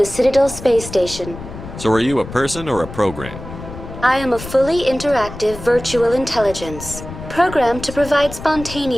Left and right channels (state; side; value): noise; left; rumble, 12 dB below the sound